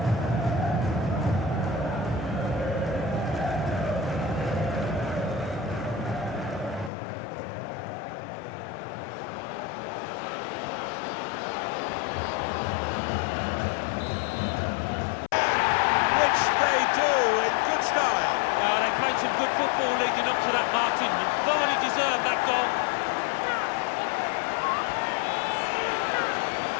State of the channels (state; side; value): drops out; right; at 6.9 s